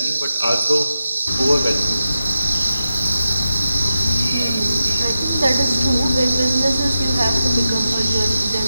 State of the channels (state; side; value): inverted; both; correlation -0.91